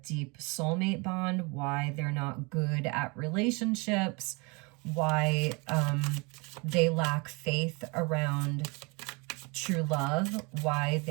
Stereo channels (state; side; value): quieter; left; 29.2 dB